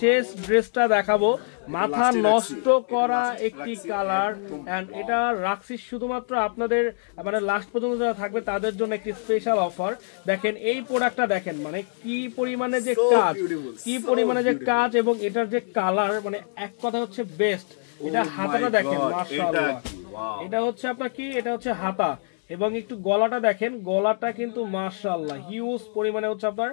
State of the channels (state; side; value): silent; right; digital silence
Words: ড্রেসটা দেখাবো, মাথা নষ্ট করা একটি কালার, এন্ড এটা রাখছি শুধুমাত্র আপনাদের মানে লাস্ট পর্যন্ত যারা থাকবে তাদের জন্য একটি স্পেশাল অফার। দেখেন এই প্রোডাক্টটা দেখেন, মানে কি পরিমাণে যে কাজ, কি পরিমাণে যে কাজ, এবং এটার যে কালার, মানে এক কথা হচ্ছে বেস্ট। এটা হাতাটা দেখেন, মাশাআল্লাহ, এটা হচ্ছে আপনার কি, এটা হচ্ছে হাতা, এবং একটু গলাটা দেখেন, গলাটা কিন্তু মাশাআল্লাহ হিউজ পরিমাণে হচ্ছে আপনার